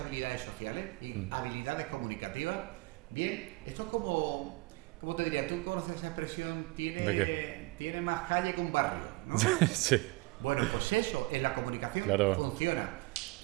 sociales y habilidades comunicativas. Bien, eso es como... ¿Cómo te diría? ¿Tú conoces esa expresión? Tiene más calle que un barrio, ¿no? Sí. Bueno, pues eso, en la comunicación claro. funciona.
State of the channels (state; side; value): quieter; left; 23.5 dB